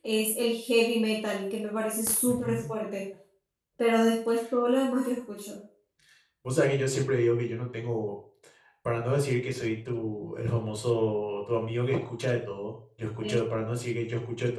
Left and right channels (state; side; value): identical; both; correlation 1.00